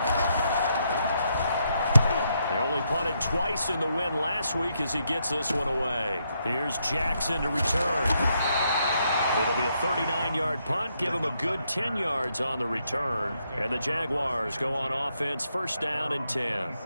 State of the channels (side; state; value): both; inverted; correlation -0.78